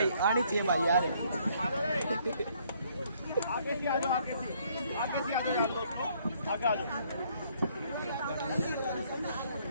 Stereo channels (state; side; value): inverted; both; correlation -0.65